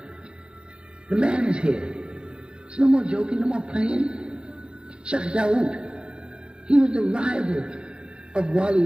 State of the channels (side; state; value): left; late; 0.051 ms